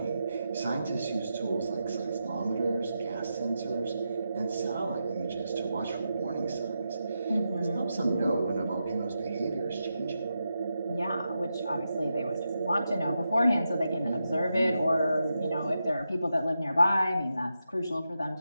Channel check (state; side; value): inverted; both; correlation -0.87